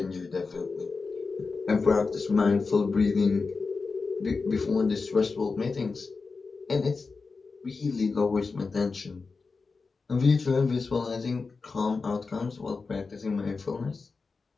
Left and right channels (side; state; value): right; quieter; 4.4 dB